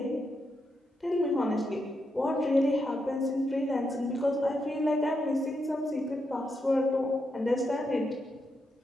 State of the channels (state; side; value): normal; both; correlation 0.83